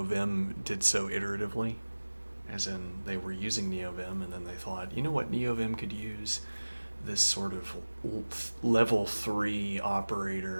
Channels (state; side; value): inverted; both; correlation -1.00